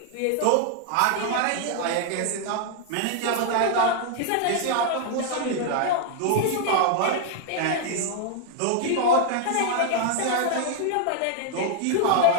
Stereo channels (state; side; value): different; both; correlation 0.00